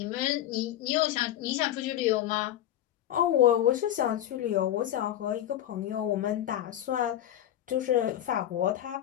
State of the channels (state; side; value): quieter; right; 12.1 dB